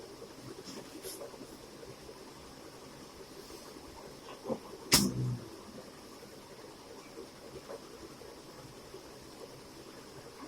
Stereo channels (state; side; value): noise; right; rumble, 23 dB below the sound